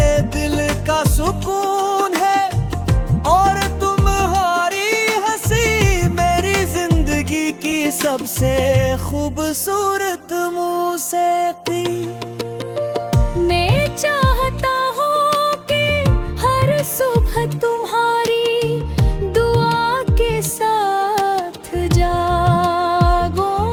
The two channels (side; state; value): both; identical; correlation 1.00